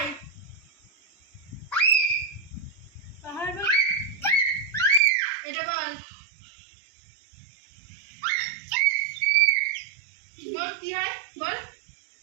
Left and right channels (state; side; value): drops out; left; at 5.0 s